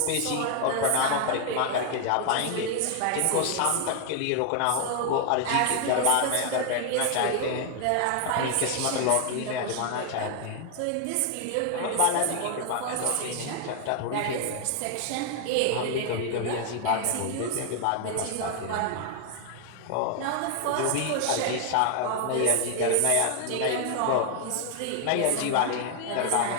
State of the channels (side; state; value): both; different; correlation 0.00